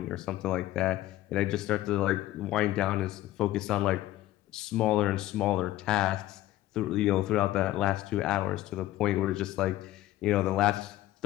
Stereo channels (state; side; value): quieter; right; 15.3 dB